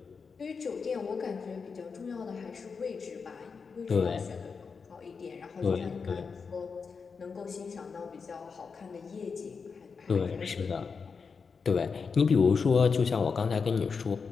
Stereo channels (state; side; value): quieter; right; 5.3 dB